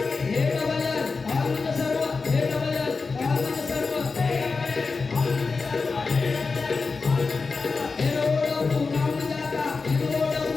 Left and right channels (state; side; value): quieter; right; 4.4 dB